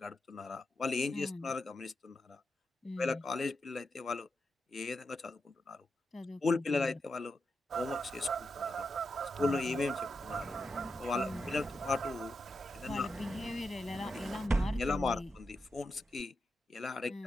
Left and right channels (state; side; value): normal; both; correlation 0.87